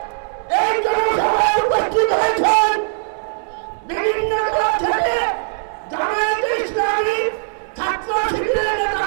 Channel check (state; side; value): silent; left; digital silence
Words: এই জনসভায় উপস্থিত হয়েছেন বিভিন্ন দল থেকে জামায়াত ইসলামী ছাত্র শিবিরের নেতা